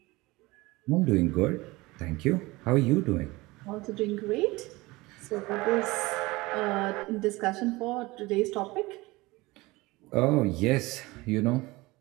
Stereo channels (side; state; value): left; quieter; 21.7 dB